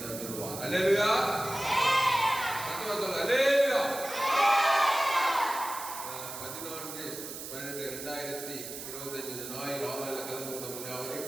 தந்துள்ளார். அல்லேலூயா. அல்லேலூயா. 14/12/2025 ஞாயிறு ஆலையில் கலந்து கொண்ட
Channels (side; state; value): right; noise; hiss, 9 dB below the sound